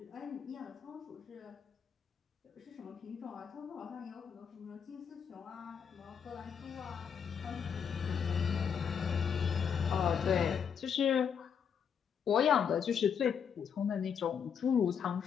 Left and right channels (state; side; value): quieter; right; 7.3 dB